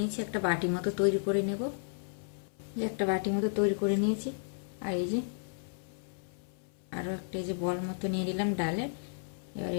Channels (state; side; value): silent; right; 56 dB below the other